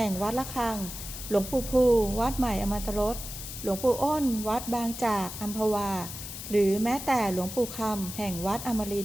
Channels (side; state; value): left; noise; hiss, 9 dB below the sound